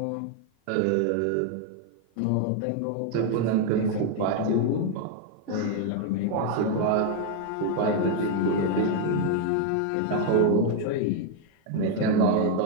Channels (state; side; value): different; both; correlation 0.00